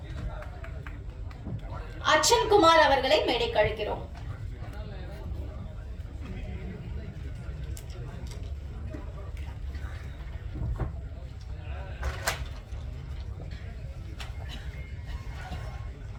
அர்ச்சன் குமார் அவர்களை மேடைக்கு அழைக்கிறோம்.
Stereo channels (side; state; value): both; identical; correlation 1.00